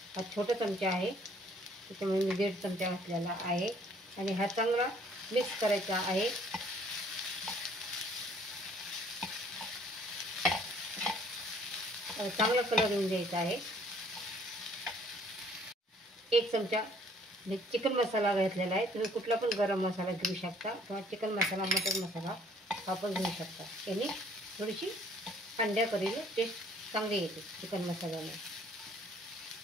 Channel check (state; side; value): normal; both; correlation 0.59